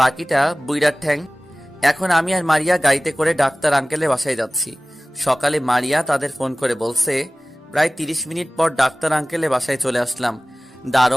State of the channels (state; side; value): normal; both; correlation 0.97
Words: বুইড়ার ঠ্যাং। এখন আমি আর মারিয়া গাড়িতে করে ডাক্তার আঙ্কেলের বাসায় যাচ্ছি। সকালে মারিয়া তাদের ফোন করে বলছে, প্রায় 30 মিনিট পর ডাক্তার আঙ্কেলের বাসায় চলে আসলাম।